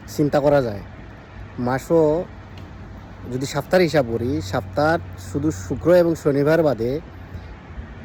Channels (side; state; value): both; identical; correlation 1.00